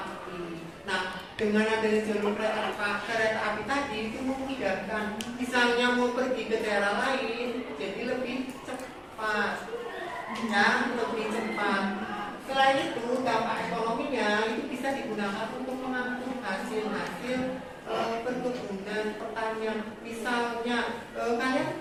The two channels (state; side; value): identical; both; correlation 1.00